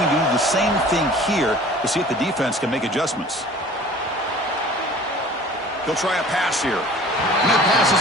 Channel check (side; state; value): both; normal; correlation 0.46